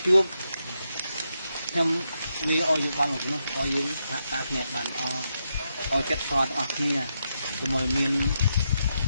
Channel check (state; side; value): inverted; both; correlation -0.83